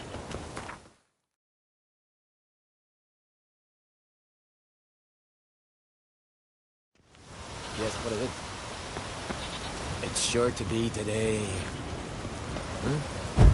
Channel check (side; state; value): both; identical; correlation 1.00